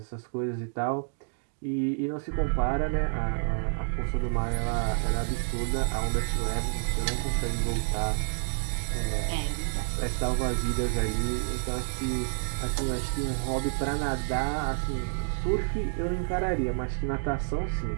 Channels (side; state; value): left; silent; digital silence